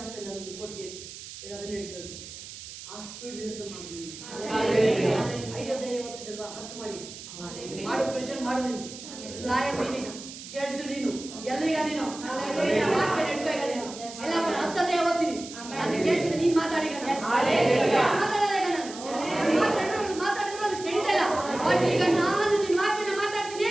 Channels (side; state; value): right; noise; hiss, 13 dB below the sound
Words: ಆಗ್ತಿಲ್ಲ ನಮ್ಮದು ಕೋರ್ಟ್ ಕೇಸು ಅದನ್ನ ಹೇಳ್ತಿರೋದು. ಆ ಸ್ಪೀಡ್ ಹೇಳ್ತಾ ಮಾಡಿ. 5 ಓದ್ತಿದ್ದಲ್ವಾ 10 ಮಾಡಿ ಮಾಡು, ಪ್ರೆಷರ್ ಮಾಡು. ನೀನು ಲಾಯರ್, ನೀನೀಗ ಜಡ್ಜ್, ನೀನು ಎಲ್ಲಿಗ ನೀನು ವಾಕ್ಯ ನಡ್ಕೋ. ಈಗ ನೀನು ಎಲ್ಲ 10 ಓದ್ತೀನಿ ನನ್ನ ಕೇಸಿನ ನೀನು ಮಾತಾಡಿಗ ಮಾತಾಡಿದ್ರೆ ಅದು ಕೆಡಿತಾ ಇಲ್ಲ. ಬಟ್ ಈಗ ನಾನು ನಿನ್ನ ವಾಕ್ಯನ ಮಾತಾಡ್ತೀನಿ,